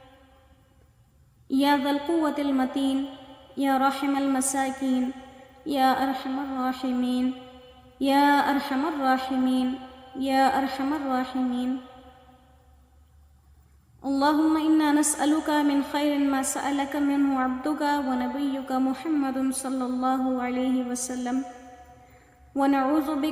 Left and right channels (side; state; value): both; identical; correlation 1.00